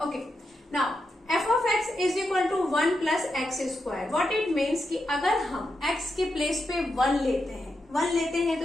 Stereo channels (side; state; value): both; normal; correlation 0.86